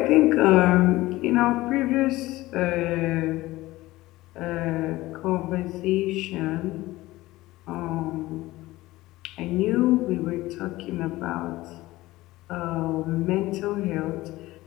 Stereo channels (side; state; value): right; quieter; 18.2 dB